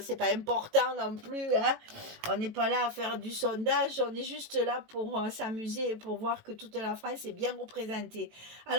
c'est pas important non plus, hein. On n'est pas là à faire du sondage, on est juste là pour s'amuser et pour voir que toute la France est bien représentée.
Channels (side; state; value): left; late; 18 ms